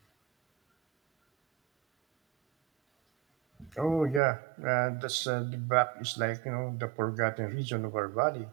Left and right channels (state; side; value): drops out; left; at 4.2 s